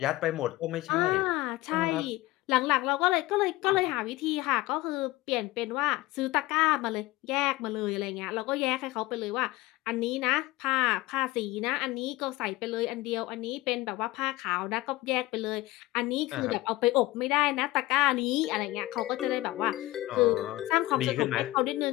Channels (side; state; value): right; quieter; 18.7 dB